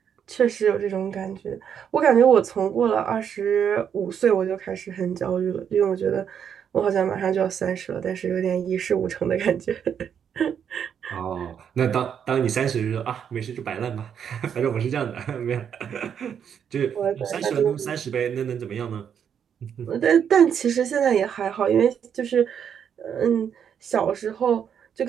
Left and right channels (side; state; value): left; quieter; 8.1 dB